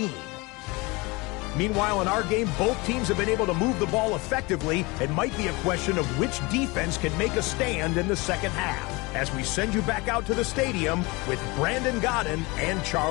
Meanwhile, in our game, both teams have been able to move the ball effectively. It might be a question of which defense can make a stand in the second half, as we send you back out to the stadium with Brandon Godden and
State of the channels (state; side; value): quieter; right; 25.1 dB